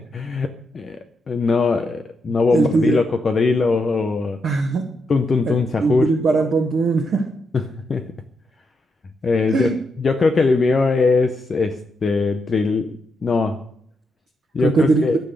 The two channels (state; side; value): normal; both; correlation 0.82